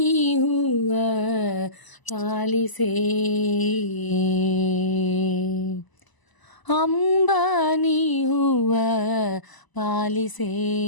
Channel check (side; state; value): right; late; 1.0 ms